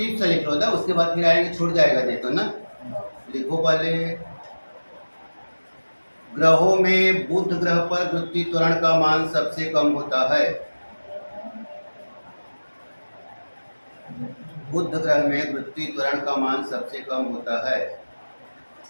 से लिख लो ना, उसके बाद फिर आएंगे, छूट जाएगा नहीं तो ना। लिखो पहले, ग्रहों में बुध ग्रह पर पृथ्वी त्वरण का मान सबसे कम होता है। बुध ग्रह में पृथ्वी त्वरण का मान सबसे कम होता है।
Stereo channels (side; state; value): both; inverted; correlation -1.00